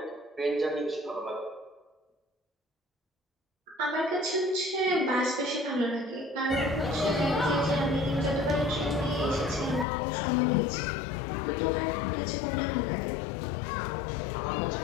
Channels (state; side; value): drops out; right; at 9.9 s